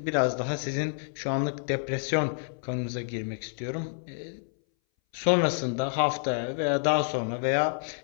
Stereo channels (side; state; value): right; silent; 59 dB below the other